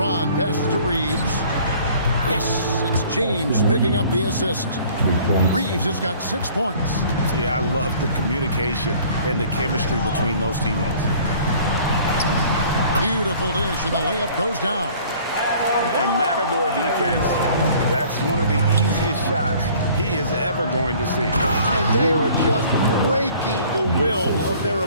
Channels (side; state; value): both; inverted; correlation -0.52